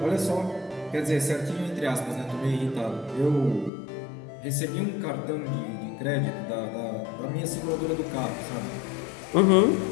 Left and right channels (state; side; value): drops out; right; at 3.7 s